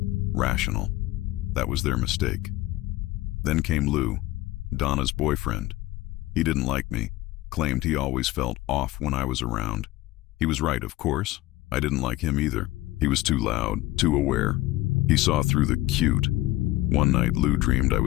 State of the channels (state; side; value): quieter; right; 17.5 dB